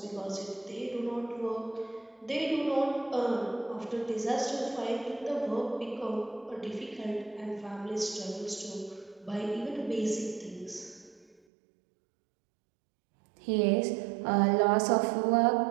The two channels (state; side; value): drops out; left; at 11.4 s